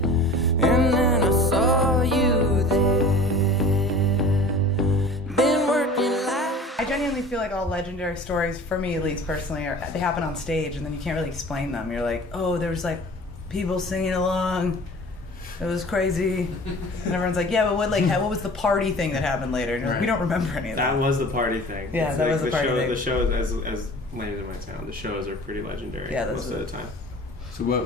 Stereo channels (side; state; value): both; normal; correlation 0.42